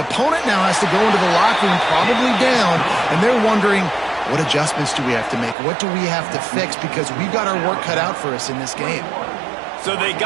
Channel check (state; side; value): drops out; left; at 5.6 s